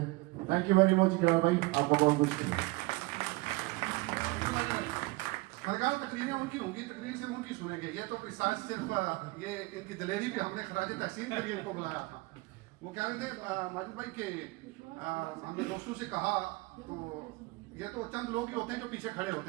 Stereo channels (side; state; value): left; quieter; 23.2 dB